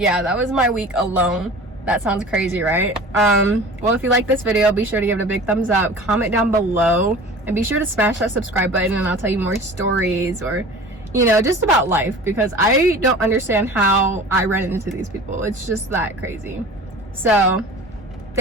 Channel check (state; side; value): normal; both; correlation 0.40